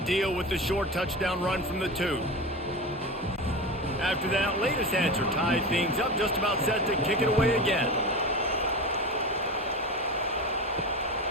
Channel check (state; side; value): normal; both; correlation 0.26